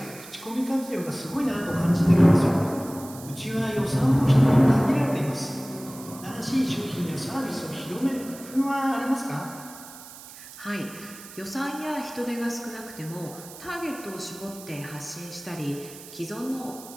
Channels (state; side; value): noise; right; hiss, 16 dB below the sound